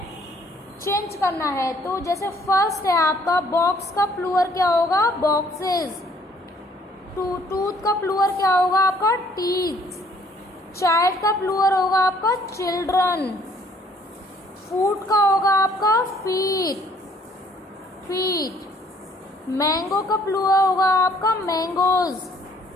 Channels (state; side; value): normal; both; correlation 0.61